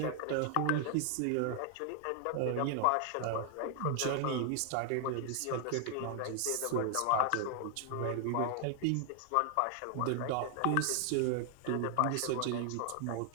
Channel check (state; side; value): different; both; correlation 0.00